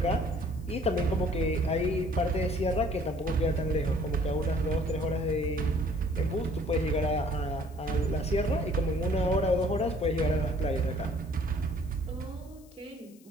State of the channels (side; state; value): left; noise; hiss, 28 dB below the sound